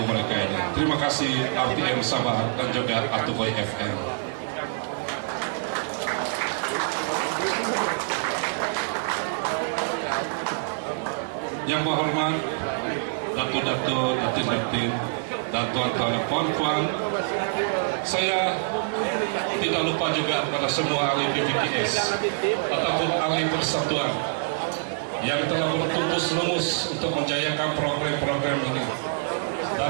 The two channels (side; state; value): left; silent; digital silence